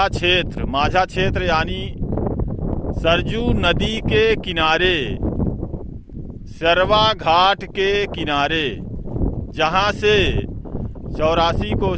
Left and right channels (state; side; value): identical; both; correlation 1.00